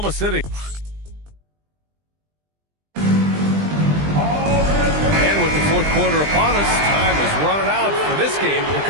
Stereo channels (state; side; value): late; left; 20 ms